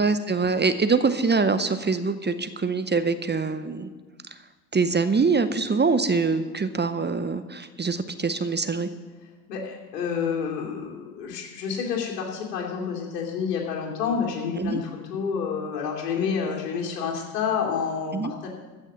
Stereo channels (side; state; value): both; normal; correlation 0.33